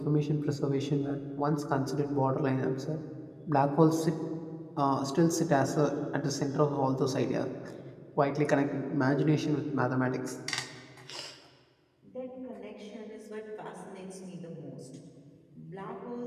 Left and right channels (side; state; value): both; identical; correlation 1.00